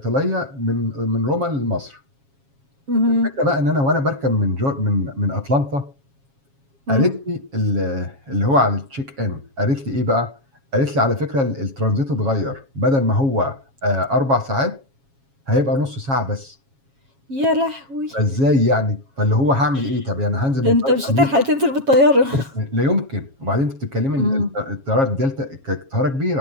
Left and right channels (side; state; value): left; late; 7.3 ms